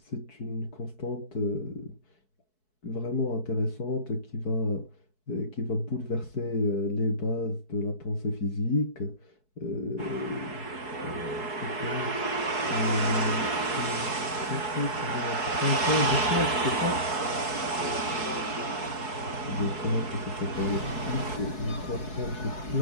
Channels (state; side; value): late; right; 4.6 ms